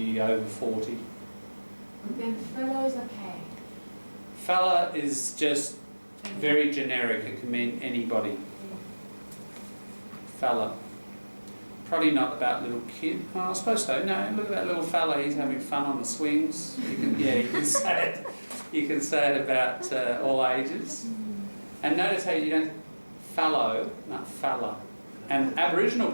over 40. Then fellow is okay. Fella is just very generic. It can mean anybody. Fella. Probably not about little kid. Oh, I suppose so. No, look at that little fella. He's having fun on the swings. You can say it. You can say it about all ages. And notice how you don't fallow, not fella. And Aboriginal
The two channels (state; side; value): inverted; both; correlation -1.00